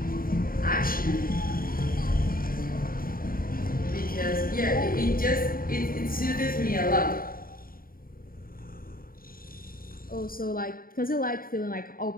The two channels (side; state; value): right; late; 0.42 ms